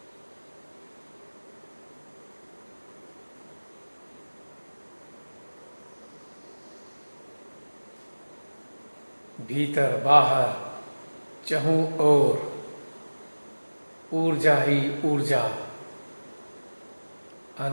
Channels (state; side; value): inverted; both; correlation -1.00